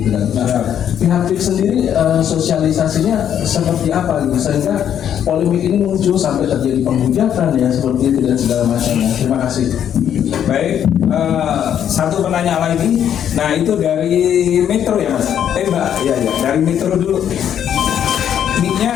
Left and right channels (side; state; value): right; quieter; 9.5 dB